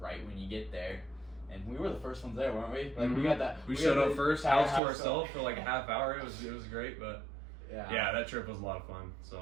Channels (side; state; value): left; drops out; at 4.8 s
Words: when you get there. And we were the first ones there, weren't we? Mm-hmm. We got that. We showed up first, house to ourselves for like a half hour. It was great, but yeah, that trip was a lot of fun.